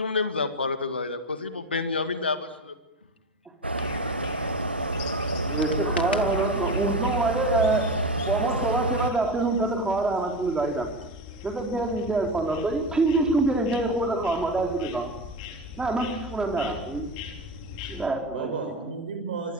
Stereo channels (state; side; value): normal; both; correlation 0.21